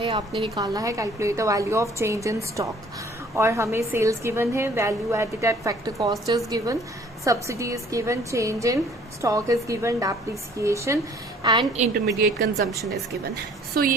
आपने निकालना है calculate the value of change in stock. और हमें सेल्स गिवन है, value added at factor cost is given, subsidy is given, change in stock is given, depreciation and intermediate consumption is given. So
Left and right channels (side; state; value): both; normal; correlation 0.55